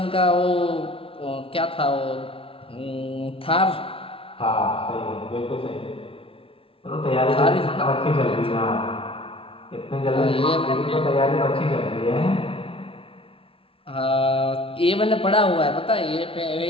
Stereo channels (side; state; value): right; late; 0.26 ms